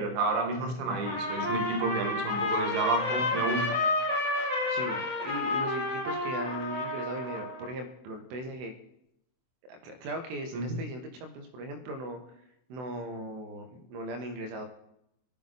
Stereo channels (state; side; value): late; left; 24 ms